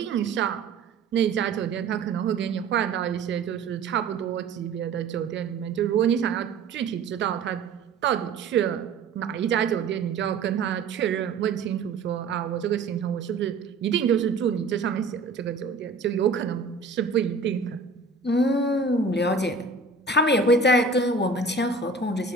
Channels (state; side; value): quieter; left; 4.1 dB